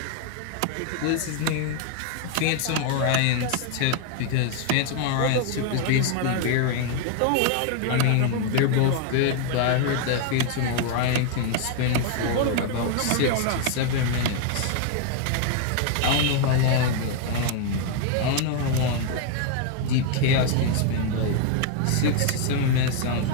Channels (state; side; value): different; both; correlation 0.00